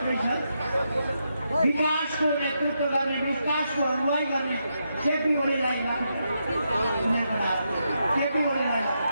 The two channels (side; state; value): both; inverted; correlation -0.83